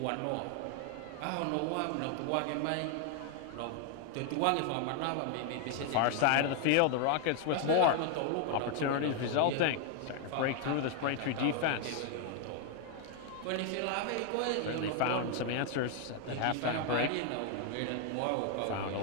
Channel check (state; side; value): different; both; correlation 0.00